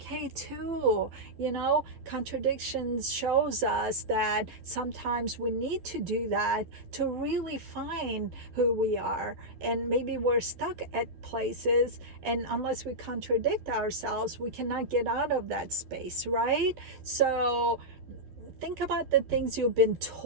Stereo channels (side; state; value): left; late; 12 ms